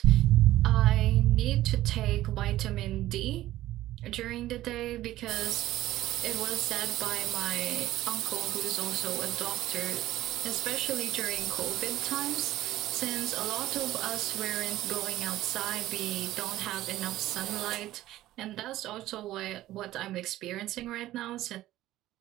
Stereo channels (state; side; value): quieter; left; 15.0 dB